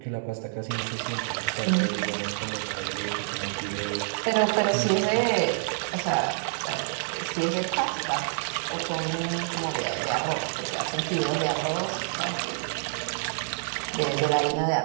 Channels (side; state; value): left; silent; digital silence